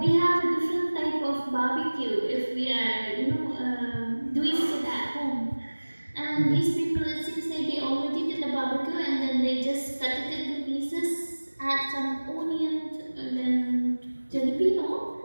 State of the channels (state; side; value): inverted; both; correlation -1.00